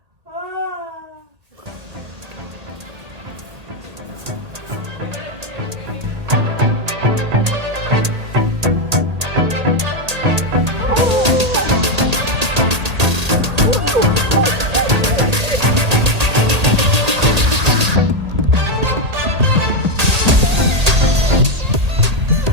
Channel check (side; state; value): left; late; 1.8 ms